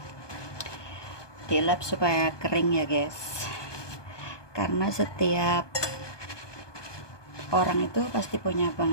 dilap supaya kering ya guys, karena setiap orang itu pasti punya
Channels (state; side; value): late; right; 1.2 ms